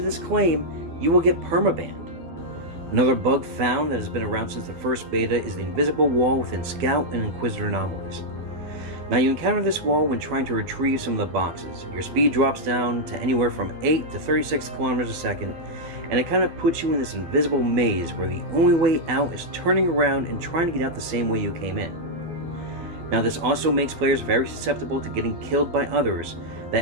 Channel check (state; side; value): late; left; 12 ms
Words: this claim, you will get permabanned. Another bug found that has been around since the first beta is the invisible wall within Scout and Inquisitor anomalies. Now you encounter this wall when trying to retrieve some of the boxes. Your speed drops down to anywhere from 8 to 36 kilometers a second, and it kind of puts you in this invisible maze where the only way out is turning around and trying to get out the same way you came in. Now this also makes players very susceptible to getting killed by others